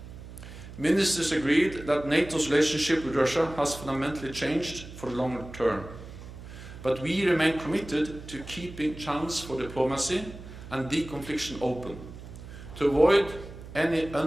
Ministers agreed that NATO's relationship with Russia has fundamentally changed for the longer term, but we remain committed to keeping channels for diplomacy and deconfliction open, to avoid any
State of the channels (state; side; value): noise; right; hum, 14 dB below the sound